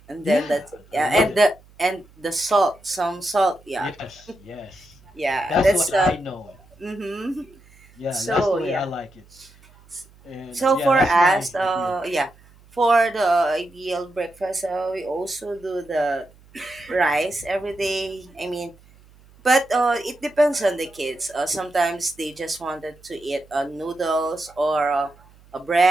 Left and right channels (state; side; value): noise; right; hum, 27 dB below the sound